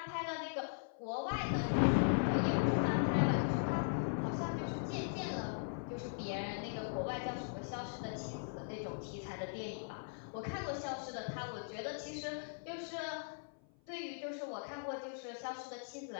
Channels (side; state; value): right; silent; 51 dB below the other